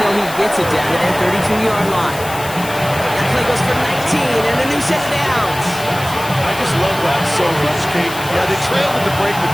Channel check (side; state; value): left; noise; hiss, 13 dB below the sound